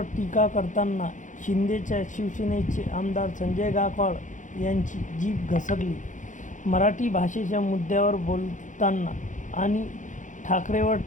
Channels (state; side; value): late; right; 0.37 ms